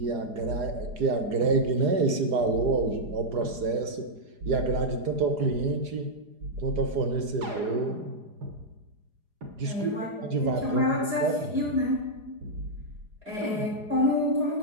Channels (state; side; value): late; left; 4.9 ms